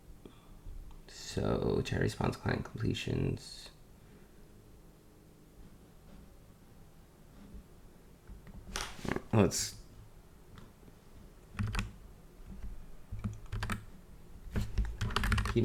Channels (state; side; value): identical; both; correlation 1.00